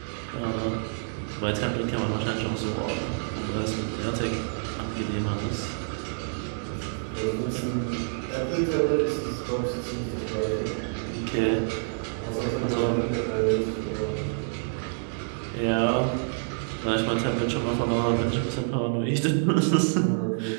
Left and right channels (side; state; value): left; silent; digital silence